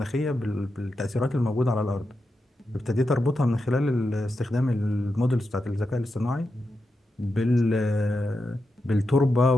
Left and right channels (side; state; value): both; normal; correlation 0.88